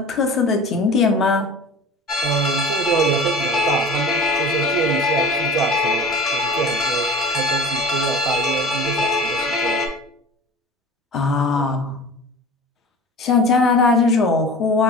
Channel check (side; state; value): both; normal; correlation 0.38